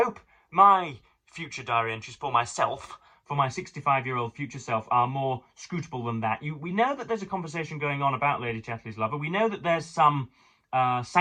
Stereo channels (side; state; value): both; identical; correlation 1.00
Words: my future diary entries for myself, for my 65-year-old future self, are more scrutable than that. We know that there's a conversation going on about Lady Chatterley's Lover. We know that there's some